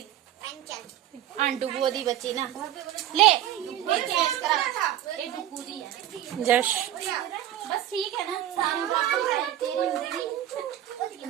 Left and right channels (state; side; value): quieter; left; 12.2 dB